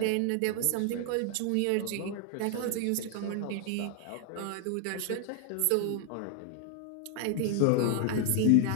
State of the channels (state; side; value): different; both; correlation 0.00